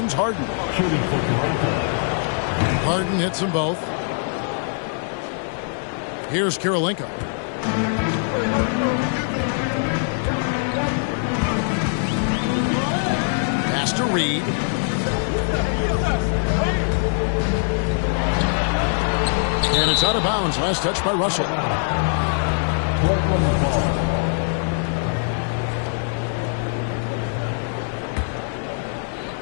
Harden. Harden hits them both. Here's Kirilenko. Pass to Reed. And it's out of bounds. Last touch by Russell.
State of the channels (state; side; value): silent; right; 60 dB below the other